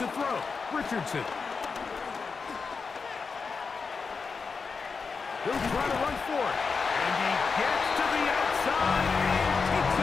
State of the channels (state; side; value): quieter; right; 5.0 dB